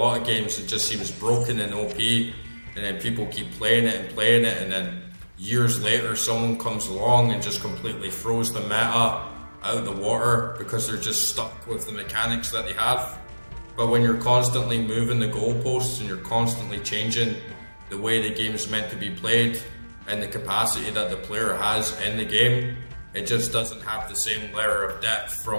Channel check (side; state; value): both; inverted; correlation -1.00